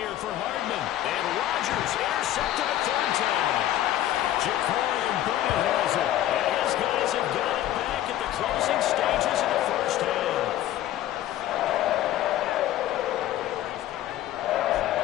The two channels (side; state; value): right; quieter; 13.1 dB